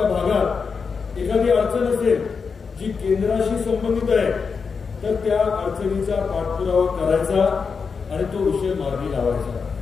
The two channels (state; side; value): quieter; right; 5.4 dB